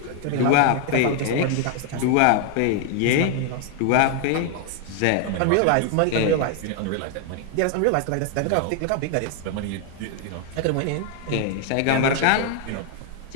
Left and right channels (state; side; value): different; both; correlation 0.00